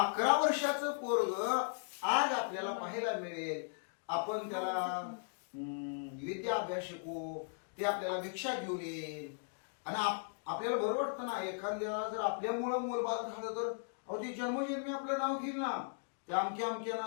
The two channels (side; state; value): right; silent; digital silence